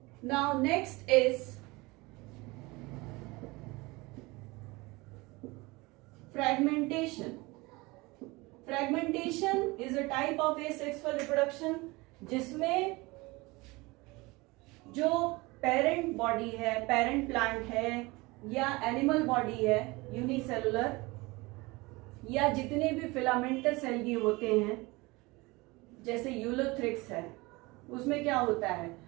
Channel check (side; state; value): left; quieter; 23.4 dB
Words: Now next is fragmentation. Fragmentation is a type of asexual reproduction जिसमें जो पेरेंट बॉडी है, पेरेंट प्लांट है या एनिमल बॉडी है यूनिसेलुलर, या जितने भी फिलामेंटस एल्गी होते हैं जैसे यूलोथ्रिक्स है, उसमें क्या होता है,